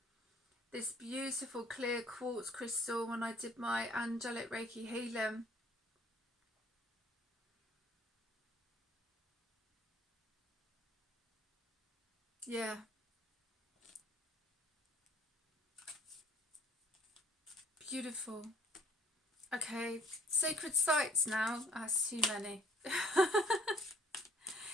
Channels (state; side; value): normal; both; correlation 0.58